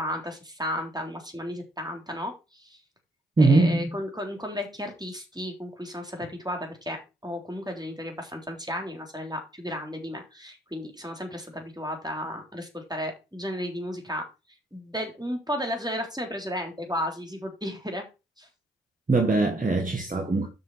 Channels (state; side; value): normal; both; correlation 0.69